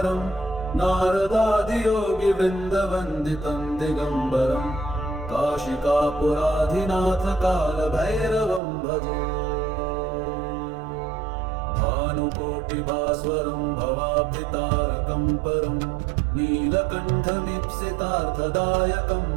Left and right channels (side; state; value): left; drops out; at 8.6 s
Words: नारदादियोगिवृन्दवन्दितं दिगम्बरं काशिकापुराधिनाथकालभैरवं भजे। भानुकोटिभास्वरं भवाब्धितारकं परं नीलकण्ठमीप्सितार्थदायकं